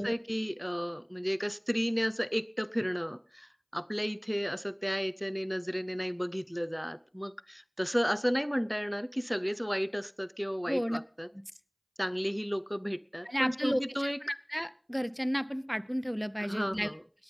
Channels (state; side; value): identical; both; correlation 1.00